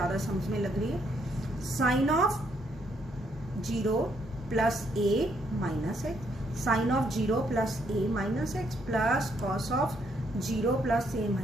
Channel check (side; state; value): both; normal; correlation 0.72